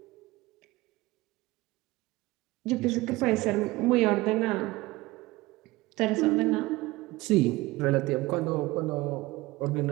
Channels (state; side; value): quieter; left; 20.2 dB